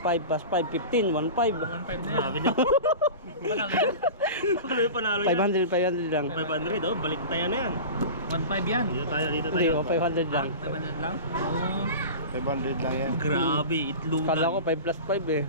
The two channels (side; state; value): both; inverted; correlation -0.32